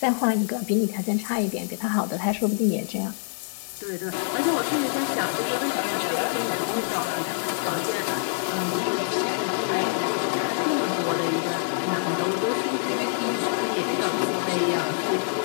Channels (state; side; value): silent; right; digital silence